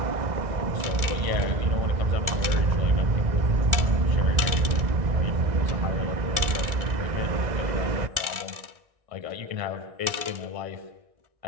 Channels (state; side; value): late; left; 1.4 ms